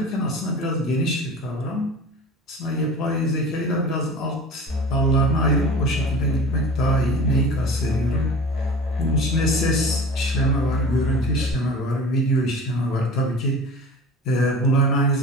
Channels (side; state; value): both; normal; correlation 0.38